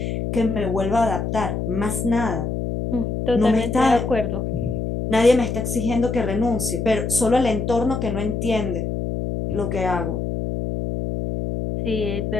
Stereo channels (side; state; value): left; noise; hum, 2 dB below the sound